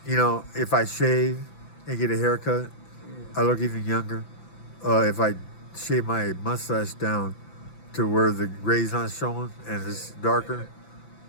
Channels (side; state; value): right; late; 5.9 ms